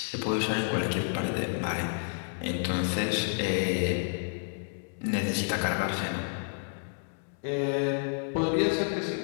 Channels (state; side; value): silent; right; digital silence